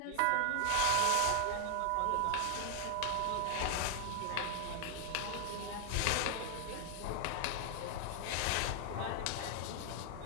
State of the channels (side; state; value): both; different; correlation 0.00